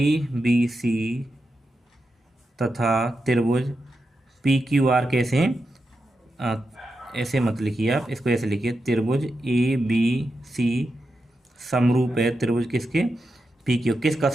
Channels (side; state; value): both; normal; correlation 0.88